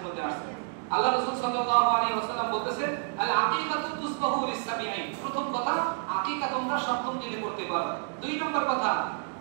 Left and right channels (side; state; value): left; silent; 58 dB below the other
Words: মধ্যে আসছে আল্লাহ রাসূল সাল্লাল্লাহু আলাইহি ওয়াসাল্লাম বলতেছেন আল আকীকাতু তুসবাহু লিসাবিঈন, প্রথম কথা আকীকা তোমরা 7ম দিনে করতে পারো। 2 নম্বর কথা